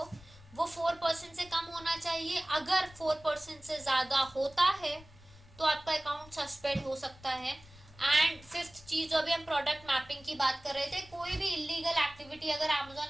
वो 4% से कम होना चाहिए। अगर 4% से ज्यादा होता है तो आपका अकाउंट सस्पेंड हो सकता है। एंड फिफ्थ चीज, जो अभी हम प्रोडक्ट मैपिंग की बात कर रहे थे, कोई भी इलीगल एक्टिविटी अगर अमेजोन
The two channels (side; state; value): left; noise; rumble, 22 dB below the sound